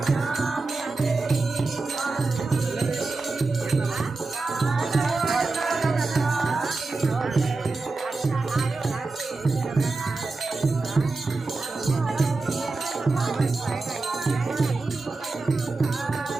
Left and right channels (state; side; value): quieter; left; 3.7 dB